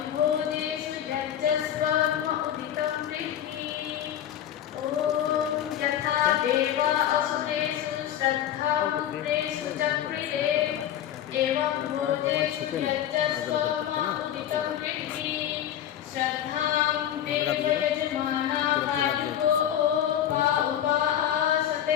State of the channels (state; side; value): quieter; right; 10.7 dB